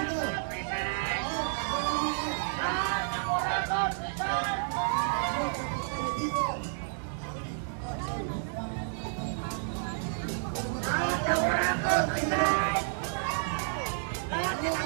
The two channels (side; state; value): left; silent; digital silence